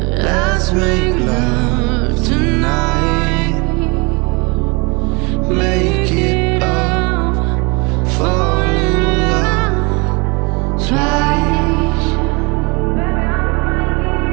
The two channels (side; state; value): left; quieter; 29.2 dB